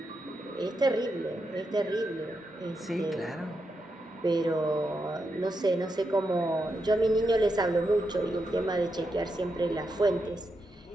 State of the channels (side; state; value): both; normal; correlation 0.84